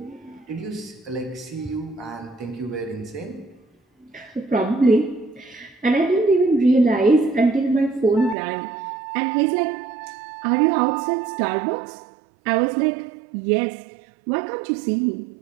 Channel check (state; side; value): drops out; left; at 8.3 s